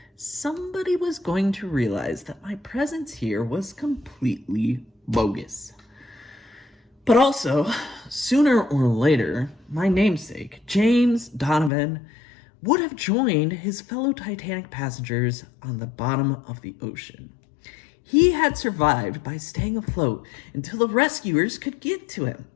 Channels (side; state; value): right; drops out; at 11.7 s